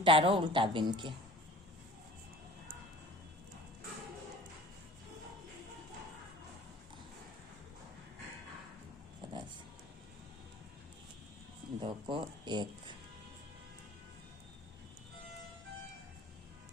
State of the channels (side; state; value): both; normal; correlation 0.45